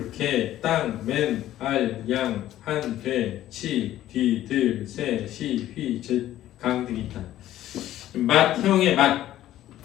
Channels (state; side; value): quieter; right; 13.4 dB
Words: 개, 땅, 맨, 알, 양, 한, 돼, 치, 뒤, 들, 새, 시, 휘, 제, 강 등이 있다. 맛형의 맛